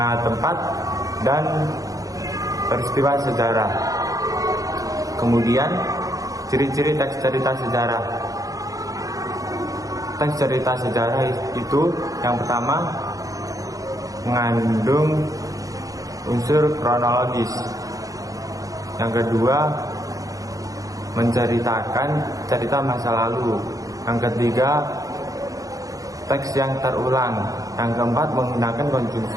tempat, dan peristiwa sejarah. Kemudian, ciri-ciri teks cerita sejarah. Teks cerita sejarah itu yang pertama mengandung unsur kronologis. Yang kedua menceritakan cerita masa lalu. Yang ketiga teks yang terulang. Yang keempat menggunakan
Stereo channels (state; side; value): late; left; 0.17 ms